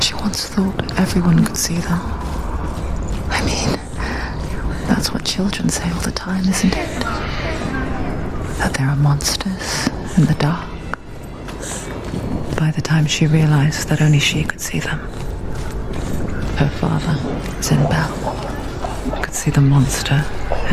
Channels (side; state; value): both; identical; correlation 1.00